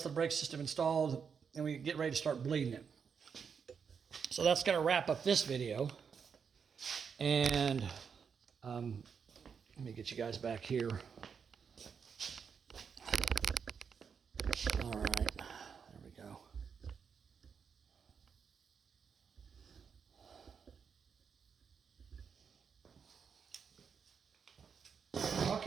of the brake system installed and we get ready to start bleeding it. So that's going to wrap up this video. And let me get you guys back here. All right, there we go.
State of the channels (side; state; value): left; quieter; 6.5 dB